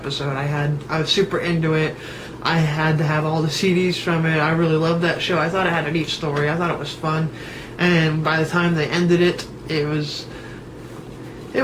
I was super into it. I had to have all the CDs from it. I really loved that show. I thought it had a neat story. I thought it was fun. And by the time they ended it, it was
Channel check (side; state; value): both; identical; correlation 1.00